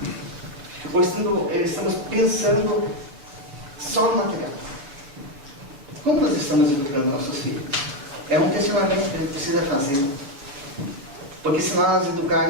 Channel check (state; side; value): late; left; 7.0 ms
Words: Ou estamos pensando só no material? Como nós estamos educando nossos filhos? É um questionamento que a gente precisa fazer. Porque se nós